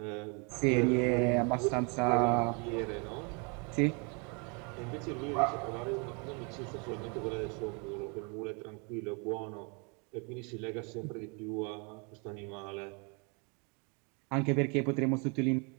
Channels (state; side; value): quieter; left; 33.6 dB